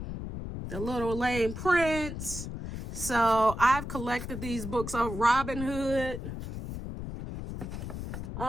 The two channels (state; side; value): noise; left; rumble, 7 dB below the sound